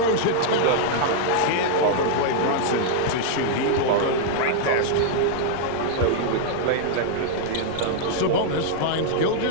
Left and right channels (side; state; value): both; different; correlation -0.01